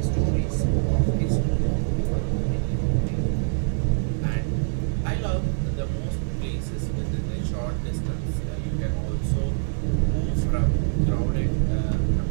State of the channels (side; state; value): left; silent; digital silence